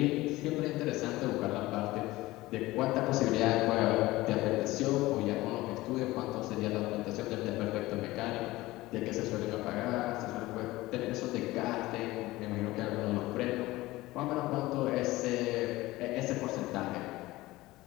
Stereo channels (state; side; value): quieter; right; 18.7 dB